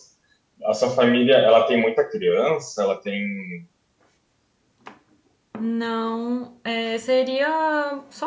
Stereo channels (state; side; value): identical; both; correlation 1.00